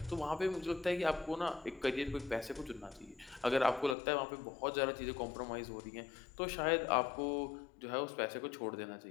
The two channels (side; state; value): right; drops out; at 4.0 s